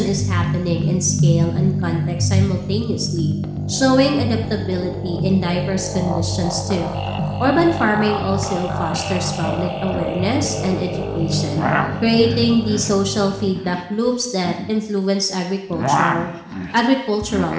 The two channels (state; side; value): identical; both; correlation 1.00